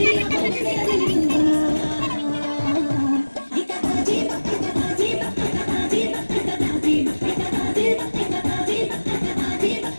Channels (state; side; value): inverted; both; correlation -1.00